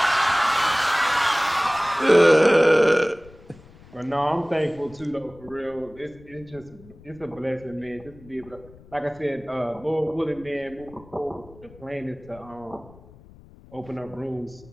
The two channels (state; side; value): noise; left; rumble, 23 dB below the sound